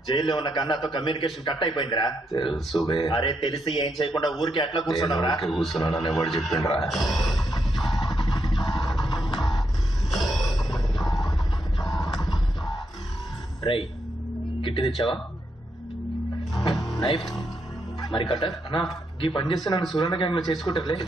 జైల్లో ఉన్న కన్నాతో కమ్యూనికేషన్ కట్ అయిపోయిందిరా. తెలుసు. అరే తెలిసి ఏం చేయకుండా ఊరికి ఎట్లా కూర్చున్నావురా? కూర్చున్నానని ఎవరు చెప్పిండ్రా? రై కిట్టి తెచ్చావా? నైఫ్ మరి కట్టర్ అన్నా ఈ పని చేస్తే నన్ను సూర్యన గ్యాంగ్ లో చేసుకుంటారులే.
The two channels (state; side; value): normal; both; correlation 0.80